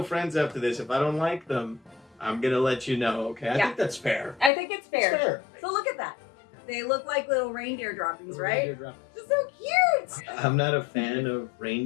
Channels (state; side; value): drops out; right; at 4.5 s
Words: friends after this. If I don't like them, I'm going to let you know, okay? I think that's fair. I think it's fair. It's fair. So look at that. They look like little reindeer droppings, Little right? reindeer drop. They're so cute. I'm not a fan of